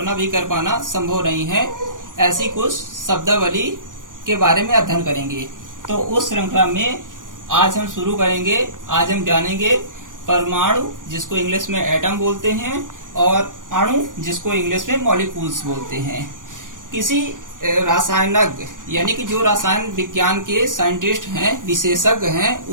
भी कर पाना संभव नहीं है, ऐसी कुछ शब्दावली के बारे में अध्ययन करेंगे। तो उस श्रृंखला में आज हम शुरू करेंगे। आज हम जानेंगे परमाणु, जिसको इंग्लिश में एटम बोलते हैं, और अणु, जिसको इंग्लिश में मॉलिक्यूल्स बोलते हैं। किसी रासायनज्ञ यानी कि जो रसायन विज्ञान के साइंटिस्ट हैं, विशेषज्ञ हैं,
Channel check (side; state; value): left; late; 0.88 ms